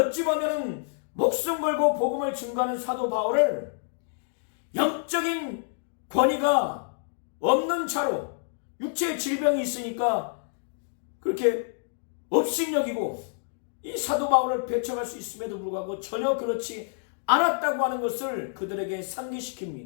보면 목숨 걸고 복음을 증거하는 사도 바울을 영적인 권위가 없는 차로 육체의 질병이 있으니까 그렇게 업신여기고 이 사도 바울을 배척할 수 있음에도 불구하고 전혀 그렇지 않았다고 하는 것을 그들에게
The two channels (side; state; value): right; silent; digital silence